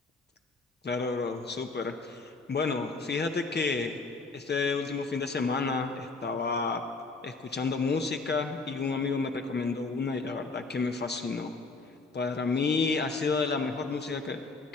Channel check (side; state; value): right; quieter; 4.0 dB